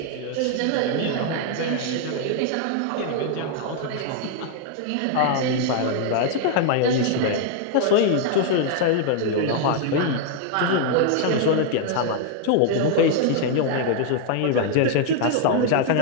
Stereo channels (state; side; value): different; both; correlation 0.00